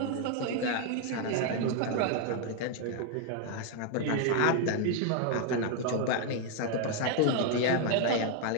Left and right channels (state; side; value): different; both; correlation 0.00